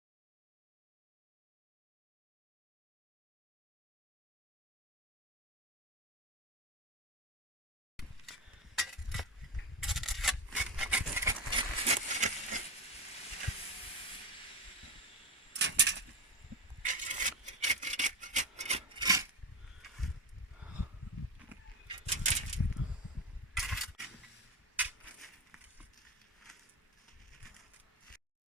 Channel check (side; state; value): both; normal; correlation 0.17